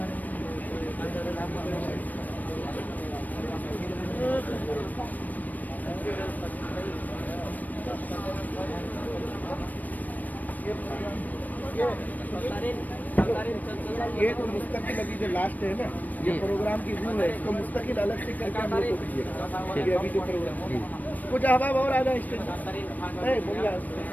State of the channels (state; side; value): late; right; 0.082 ms